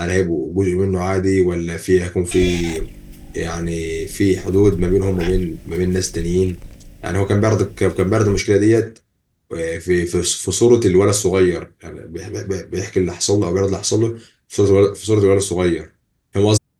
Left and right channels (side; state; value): both; identical; correlation 1.00